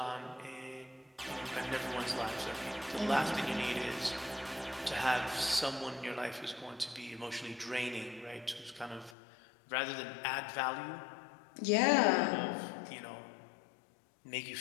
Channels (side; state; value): right; drops out; at 9.2 s